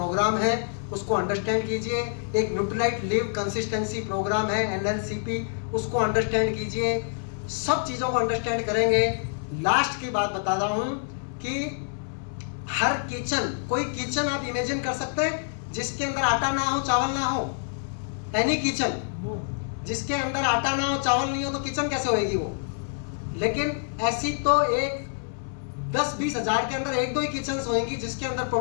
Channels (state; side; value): silent; right; digital silence